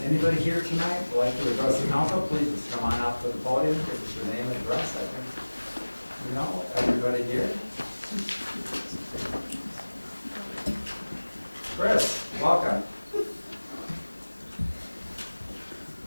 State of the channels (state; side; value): inverted; both; correlation -1.00